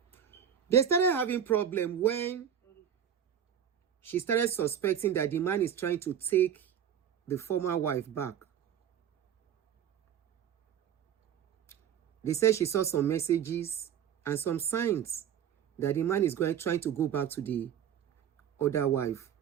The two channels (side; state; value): left; quieter; 9.0 dB